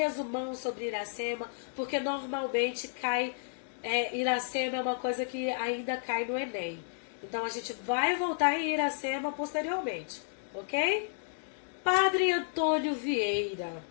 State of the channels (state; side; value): silent; right; digital silence